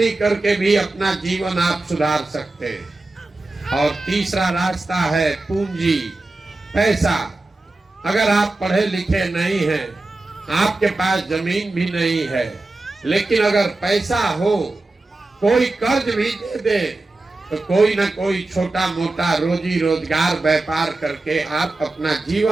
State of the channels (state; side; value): quieter; left; 3.0 dB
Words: करके भी अपना जीवन आप सुधार सकते हैं। और तीसरा रास्ता है पूंजी, पैसा। अगर आप पढ़े लिखे नहीं हैं, आपके पास जमीन भी नहीं है, लेकिन अगर पैसा हो, कोई कर्ज भी दे दे तो कोई ना कोई छोटा मोटा रोजी रोजगार व्यापार करके आप अपना